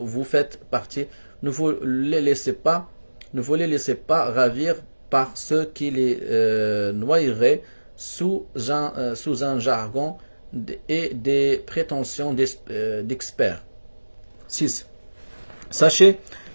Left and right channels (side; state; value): both; inverted; correlation -1.00